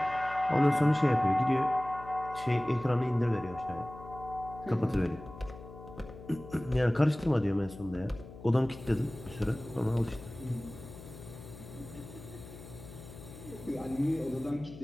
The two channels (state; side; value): noise; left; hum, 16 dB below the sound